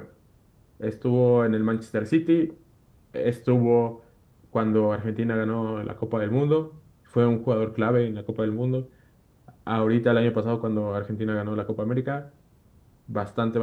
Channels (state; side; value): identical; both; correlation 1.00